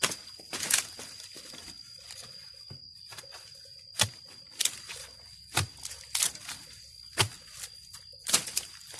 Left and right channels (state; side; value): identical; both; correlation 1.00